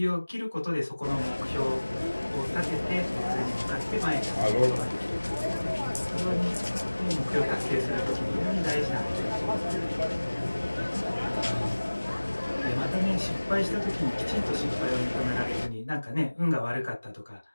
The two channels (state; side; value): inverted; both; correlation -1.00